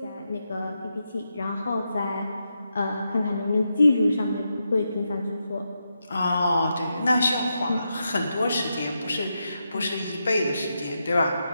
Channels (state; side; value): inverted; both; correlation -0.85